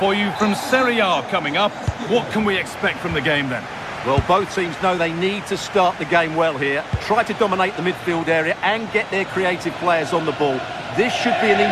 you from Serie A coming up. What can we expect from the game then? Well, both teams know they need to start the game well here, try to dominate the midfield area and get their creative players on the ball. This should be an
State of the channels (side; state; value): both; identical; correlation 1.00